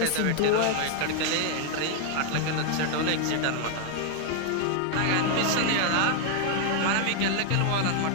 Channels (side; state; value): both; different; correlation 0.00